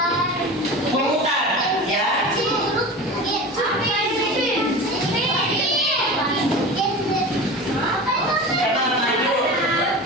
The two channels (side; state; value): both; normal; correlation 0.32